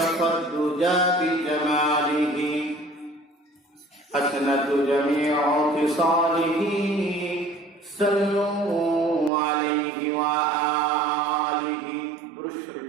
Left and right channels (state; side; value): drops out; left; at 9.3 s